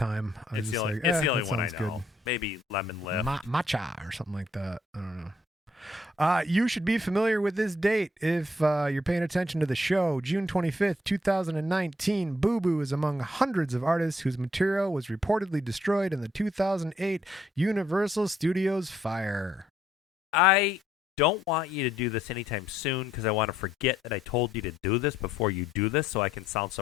It's the only one I know. Good. Maybe Lemon Lift. Matcha or something like that. I don't know. You should be familiar with this date if you're paying attention to the show. June 25th, 2019, Boo Boo is among hundreds of artists whose material was reportedly destroyed in the 2008 Universal Studios fire. I don't want you to do this anytime soon because I want to forget that I told you to do this before you do this so I can sound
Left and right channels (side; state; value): both; normal; correlation 0.70